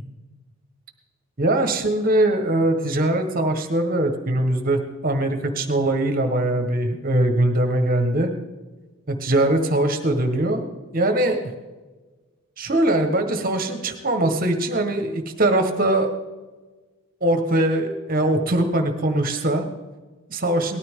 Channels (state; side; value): normal; both; correlation 0.44